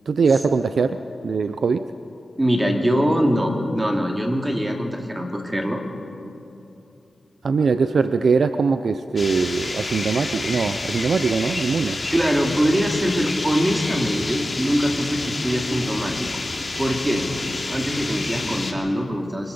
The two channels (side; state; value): both; normal; correlation 0.92